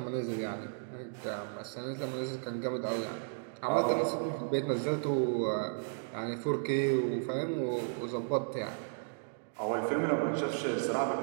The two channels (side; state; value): left; silent; digital silence